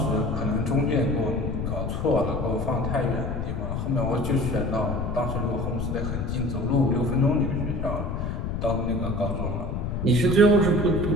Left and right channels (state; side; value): noise; left; rumble, 3 dB below the sound